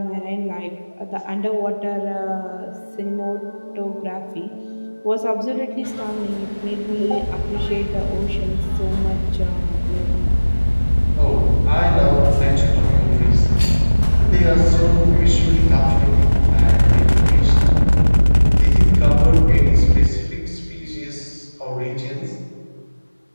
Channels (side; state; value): both; inverted; correlation -1.00